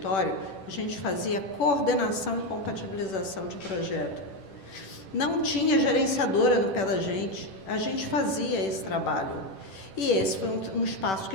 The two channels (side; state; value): right; late; 10 ms